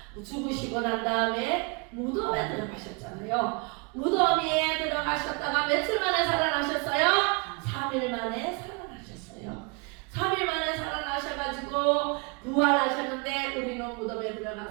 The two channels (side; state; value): left; quieter; 31.5 dB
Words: 죽으시고 난 다음에 무덤에 들어가셨잖아요. 무덤에 들어가셨다가 며칠 만에 살아나셨어요? 3일 만에 살아나셨어요. 3일 만에 살아나셔가지고 부활하셨는데, 우리는 무덤에